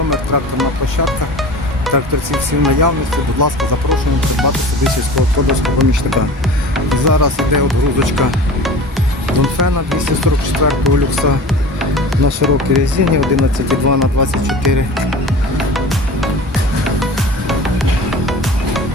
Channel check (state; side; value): normal; both; correlation 0.37